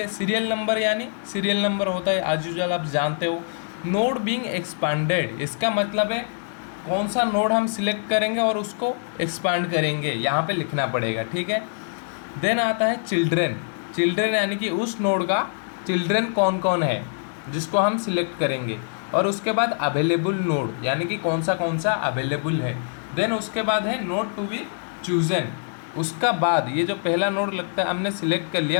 सीरियल नंबर यानी सीरियल नंबर होता है एज यूजुअल, आप जानते हो। नोड बीइंग एक्सपेंडेड, इसका मतलब है कौन सा नोड हम सिलेक्ट करेंगे और उसको एक्सपांड करेंगे, यहाँ पे लिखना पड़ेगा। ठीक है, देन आता है चिल्ड्रन। चिल्ड्रन यानी कि उस नोड का चिल्ड्रन कौन कौन है जिसको हम सिलेक्ट करेंगे, और उसके बाद अवेलेबल नोड यानी कि कौन सा अवेलेबल है। देन उसके बाद है नोड टू बी चूजन, उसका बाद ये जो पहला नोड लगता है हमने सिलेक्ट कर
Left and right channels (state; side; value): silent; right; digital silence